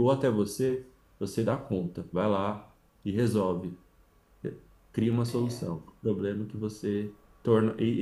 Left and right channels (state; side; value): identical; both; correlation 1.00